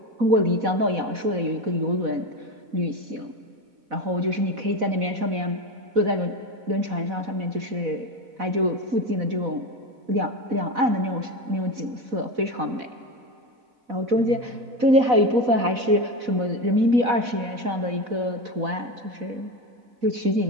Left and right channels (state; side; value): late; left; 4.1 ms